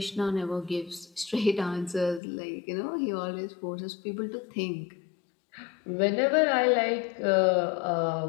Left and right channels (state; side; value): drops out; right; at 2.2 s